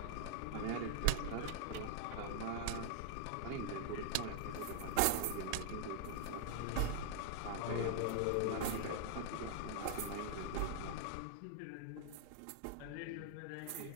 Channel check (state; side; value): different; both; correlation -0.01